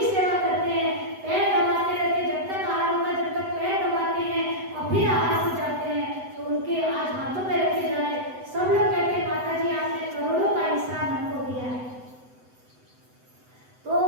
सेवा करते हैं। पैर दबाते रहते, जब तक आहार होगा, जब तक पैर दबाते हैं और फिर आहार हो जाते हैं, तो उनके आज हाथों में रखे जा रहे। सब लोग कहते हैं माता जी आपने करोड़ों का एहसान हमको दिया है। तो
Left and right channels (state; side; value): late; left; 7.9 ms